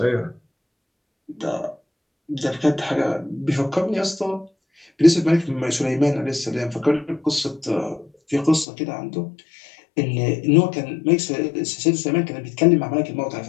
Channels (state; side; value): drops out; right; at 8.7 s